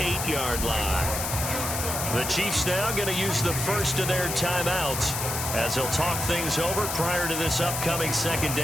line. The Chiefs now going to use the first of their timeouts as they'll talk things over prior to this upcoming 2nd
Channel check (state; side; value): noise; left; hiss, 3 dB below the sound